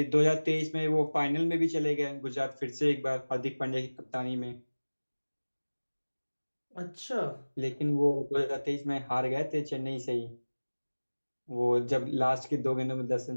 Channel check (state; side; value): inverted; both; correlation -1.00